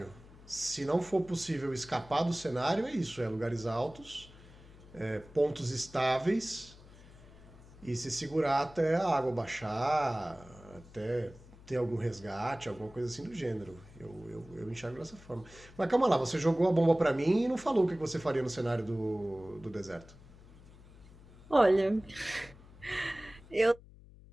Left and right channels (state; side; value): noise; left; hum, 21 dB below the sound